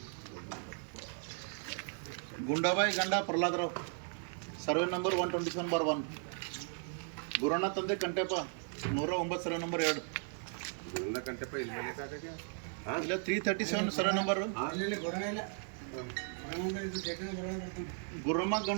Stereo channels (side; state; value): left; silent; 54 dB below the other